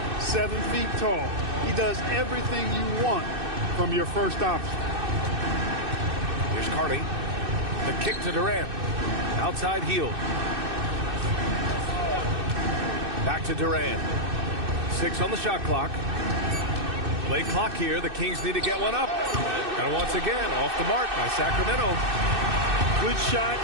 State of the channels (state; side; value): late; left; 2.6 ms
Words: 7 feet tall. He does everything you want from your first option. Here's Carney. The kick to Durant. Outside heel. Back to Durant. 6 on the shot clock. Play clock here. The Kings need to get one up. And once again, off the mark by Sacramento. Good shot,